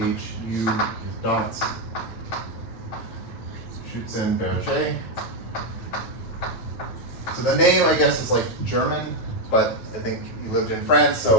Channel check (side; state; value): right; late; 9.2 ms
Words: is dots Schutzenberger. So the name, I guess, is like German, but I think he lived in France,